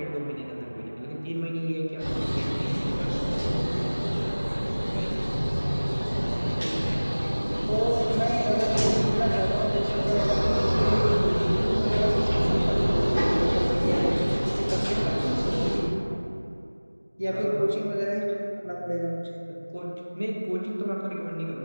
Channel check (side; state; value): both; inverted; correlation -1.00